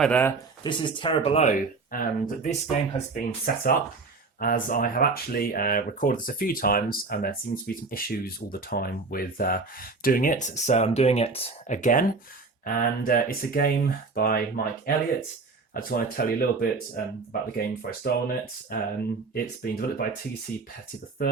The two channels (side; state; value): left; quieter; 4.0 dB